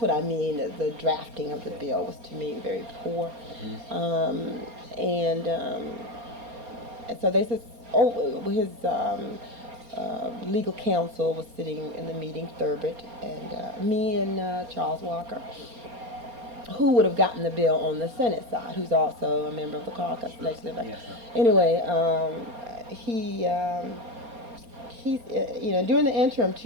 I mean, the drafting of the bill was, to me, very poor. And so they said, his legal counsel was sitting in the meeting, Thurbet, and me and Charles Walker, who would have gotten the bill on the Senate side, who's also a member of the caucus. Anyway, he's, during the interim,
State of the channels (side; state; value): left; late; 4.1 ms